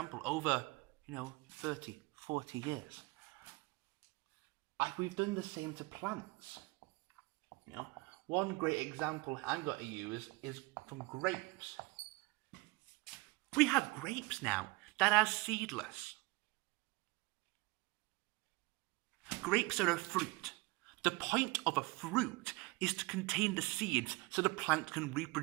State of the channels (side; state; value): left; quieter; 23.8 dB